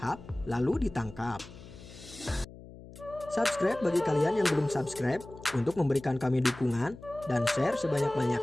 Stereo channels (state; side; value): noise; left; hum, 17 dB below the sound